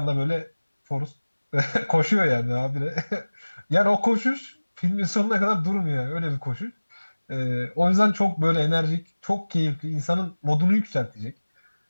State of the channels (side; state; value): both; inverted; correlation -1.00